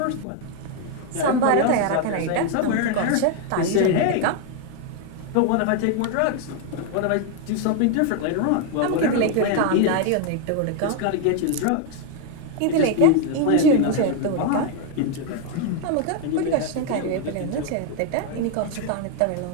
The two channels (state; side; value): different; both; correlation 0.01